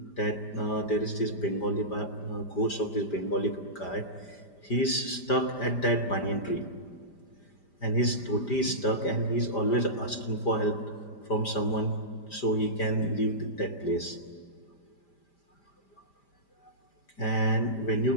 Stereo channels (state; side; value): late; right; 5.0 ms